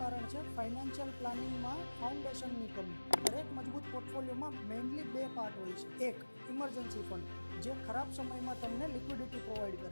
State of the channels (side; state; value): both; inverted; correlation -1.00